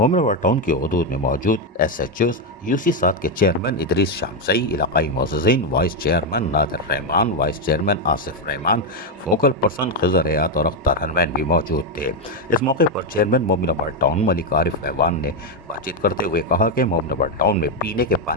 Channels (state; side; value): normal; both; correlation 0.04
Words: टाउन की हदूद में मौजूद SHOs UC7 के चेयरमैन इदरीस शामसई, इलाकाई मोअज़्ज़िज़ीन, vice chairman Nadir Rehman, vice chairman Asif Rehman, focal person Khizar Hayat और अख्तर हनमैन भी मौजूद थे। इस मौके पर चेयरमैन मोमिनाबाद टाउन मलिक आरिफ ऐवान ने बातचीत करते हुए कहा कि मोमिनाबाद टाउन में पीने के